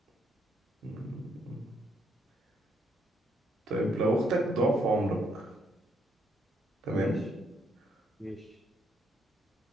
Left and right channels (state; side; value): normal; both; correlation 0.73